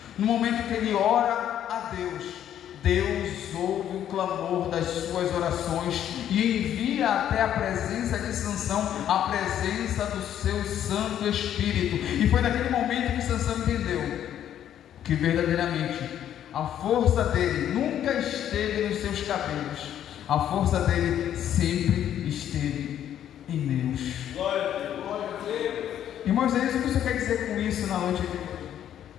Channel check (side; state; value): right; quieter; 10.5 dB